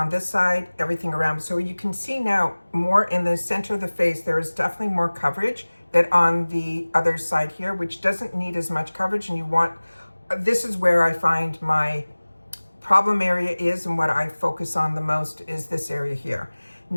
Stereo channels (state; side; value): inverted; both; correlation -1.00